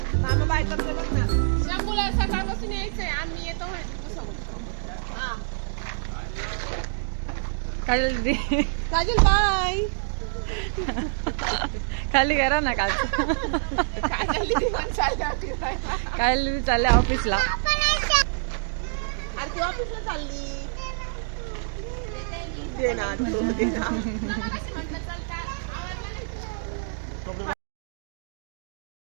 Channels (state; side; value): silent; left; digital silence